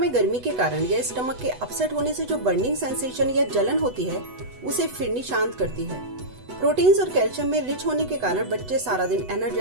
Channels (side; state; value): left; late; 8.0 ms